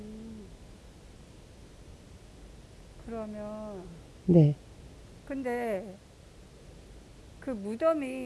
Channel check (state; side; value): identical; both; correlation 1.00